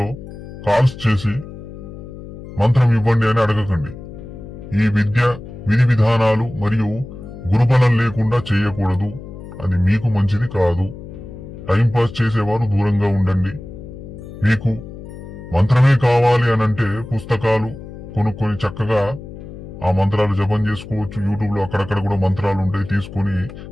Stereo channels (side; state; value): left; noise; hum, 13 dB below the sound